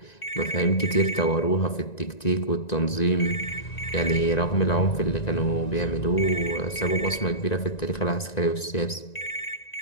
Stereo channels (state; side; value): late; right; 1.9 ms